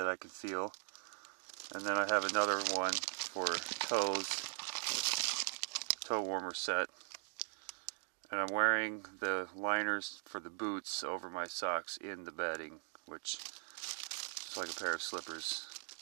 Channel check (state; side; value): silent; left; 51 dB below the other